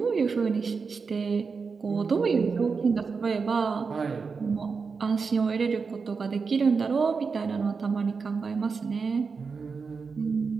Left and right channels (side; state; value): left; quieter; 5.1 dB